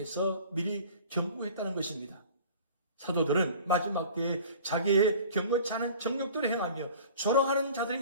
미리 경고했다는 것입니다. 사도들은 마지막 때에 자기의 경건치 않은 정욕대로 행하며 조롱하는 자들이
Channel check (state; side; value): inverted; both; correlation -0.45